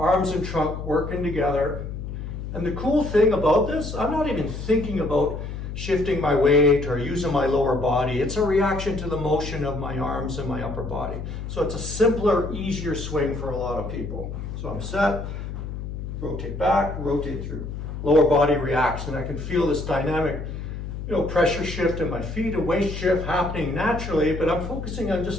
and trunk working together. And the cool thing about this, I'm not even thinking about shifting my weight or using my lower body. It's a reaction to the motion of my arms and my upper body. So it's a simpler, easier swing for a lot of people. So I'm set, rotate back, rotate through. Lower body reacts, and I can feel this dynamic, pressure shift in my feet, a weight shift happening naturally, but I'm focusing on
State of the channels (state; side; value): noise; left; hum, 7 dB below the sound